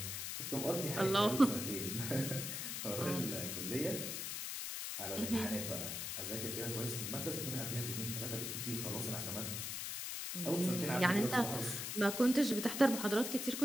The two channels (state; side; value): noise; left; hiss, 4 dB below the sound